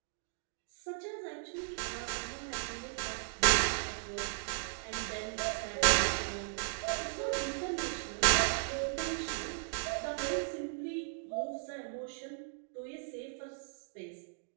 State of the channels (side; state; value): left; silent; digital silence